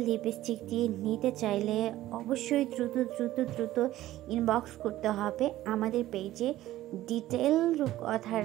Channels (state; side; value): quieter; left; 14.9 dB